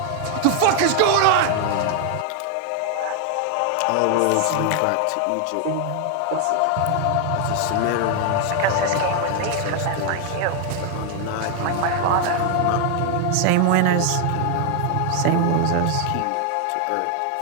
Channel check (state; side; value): different; both; correlation 0.00